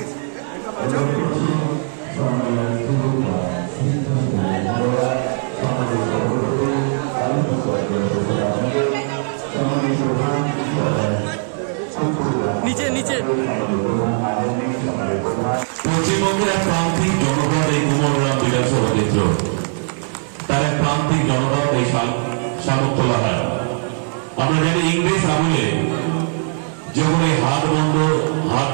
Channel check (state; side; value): silent; left; 60 dB below the other